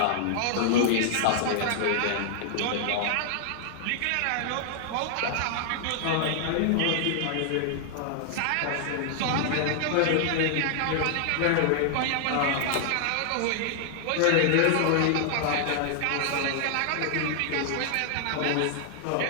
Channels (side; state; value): both; different; correlation 0.00